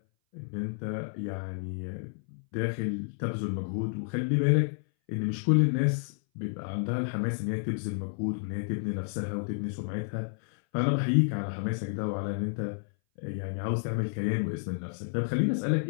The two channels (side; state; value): right; silent; 58 dB below the other